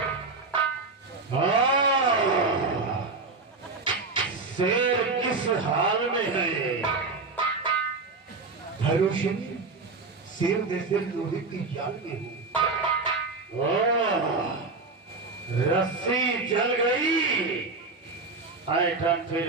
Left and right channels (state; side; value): quieter; left; 3.9 dB